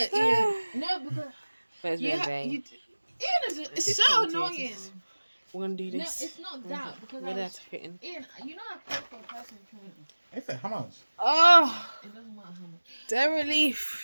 Ian. No, because But it's you been ha- vain. you. Ian is Just so commentators. annoying. We're gonna do No, this. it's not that because We're I gonna was, have to fit in. Ian, you know I paid for a personal trainer. Is it? How much? Oh, It doesn't matter how much. the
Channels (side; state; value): both; inverted; correlation -1.00